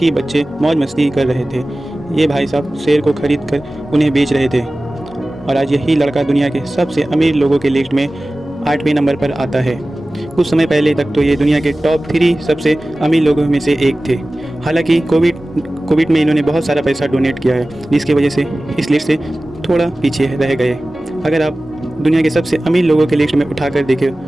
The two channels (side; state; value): both; normal; correlation 0.97